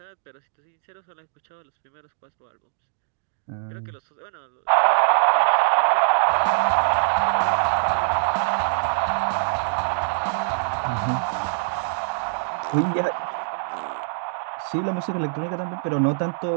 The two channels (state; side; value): silent; left; digital silence